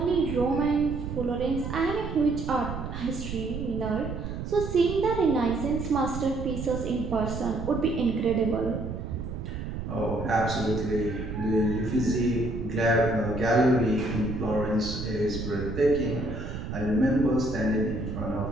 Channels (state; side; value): noise; right; rumble, 6 dB below the sound